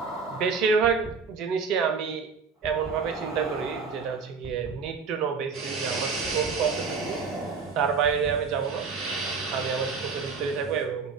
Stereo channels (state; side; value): quieter; left; 5.2 dB